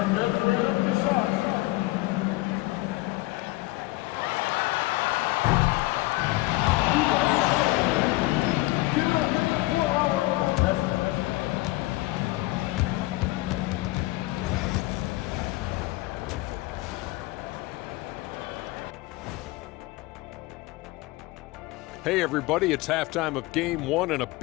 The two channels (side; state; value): right; quieter; 20.2 dB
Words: measuring up the shot. Give it up for our contestant. Hey everybody, it's halftime of Game 1 and a